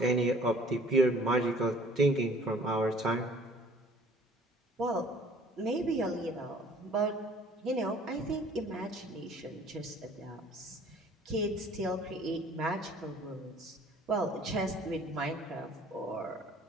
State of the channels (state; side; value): normal; both; correlation 0.53